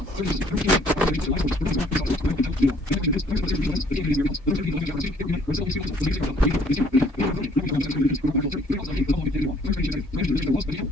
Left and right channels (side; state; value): both; normal; correlation 0.60